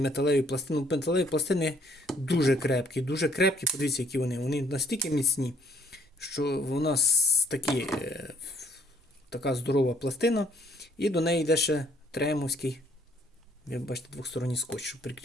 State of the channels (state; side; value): normal; both; correlation 0.64